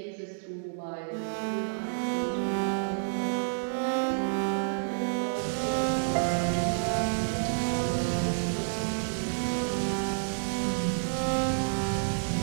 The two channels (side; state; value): left; silent; digital silence